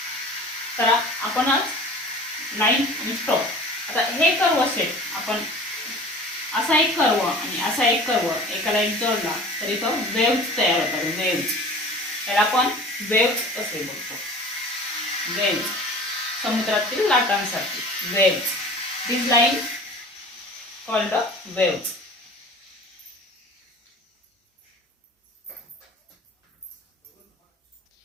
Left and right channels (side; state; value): both; normal; correlation 0.42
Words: तर आपण आज लाईन आणि स्ट्रोक. आता हे कर्व सेट आपण असा एक कर्व आणि असा एक कर्व एका लाईन जोडला तरी तो वेव्हज तयार होतात. त्याला आपण वेव्हज असे बोलतो. वेव्हज समुद्रातील लाटांसारखी waves. This line called waves.